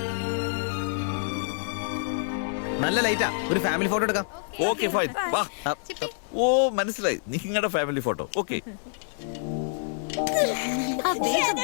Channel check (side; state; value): right; silent; digital silence